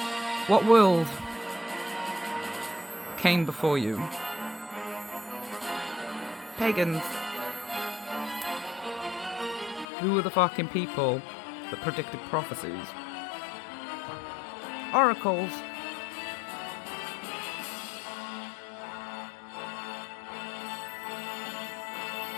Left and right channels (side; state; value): right; drops out; at 9.9 s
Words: What world came before you? Pagans. Who were the fucking people that predicted prophecies? Oracles.